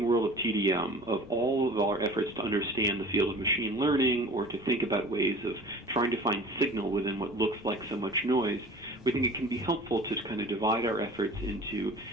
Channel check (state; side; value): normal; both; correlation 0.42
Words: world of TDM, of all of our efforts to understand the field of machine learning or to think about ways of trying to find signal within what looks like so much noise, we think it can be helpful to kind of divide our efforts into